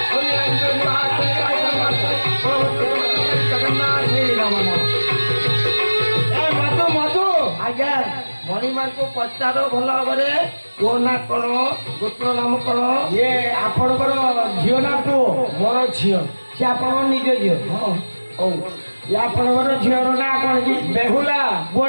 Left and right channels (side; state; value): both; inverted; correlation -1.00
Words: জগন্নাথ হে নমঃ এ মধু মধু আজ্ঞা ମଣିମାଙ୍କୁ ପଚାର ଭଲ ଭାବରେ ପୁଅ ନା କଣ ଗୋତ୍ର ନାମ କଣ ଇଏ ଆପଣଙ୍କର ଝିଅ ନା ପୁଅ ମୋର ଝିଅ ସେ ଆପଣଙ୍କ ନିଜ ଝିଅ ହଁ ହଉ ଇଏ ଆପଣଙ୍କର ଝିଅର ନାଁ କଣ କି ବେହୁଲା